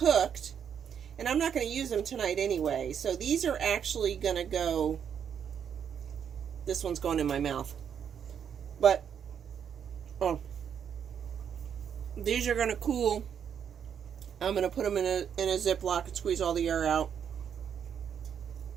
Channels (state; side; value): quieter; left; 8.1 dB